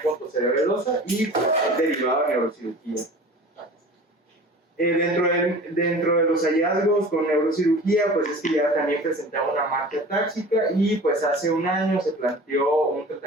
pontocerebelosa y derivada de neurocirugía. Dentro de los hallazgos con neurocirugía, pues es que ya también presentaba una marca táxica y pues hace 1 año se planteó un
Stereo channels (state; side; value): normal; both; correlation 0.40